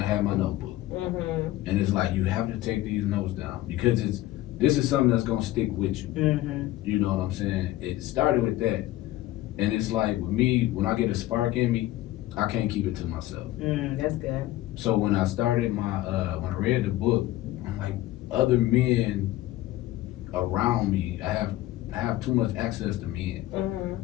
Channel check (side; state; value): right; quieter; 15.8 dB